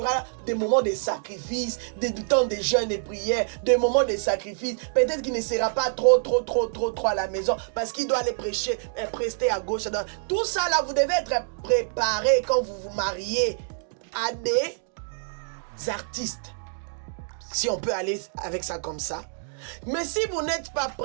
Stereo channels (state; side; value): silent; left; digital silence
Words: des moments de sacrifice, des temps de jeûne et prière, des moments de sacrifice. Peut-être qu'il ne sera pas trop à la maison parce qu'il doit aller prêcher, prester à gauche, à droite. Tout ça là, vous devez être préparé quand vous vous mariez à des artistes. Si on peut aller avec ça comme ça. Mais si vous n'êtes pas